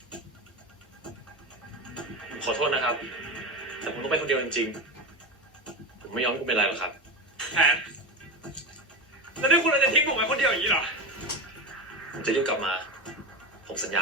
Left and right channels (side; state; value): both; normal; correlation 0.20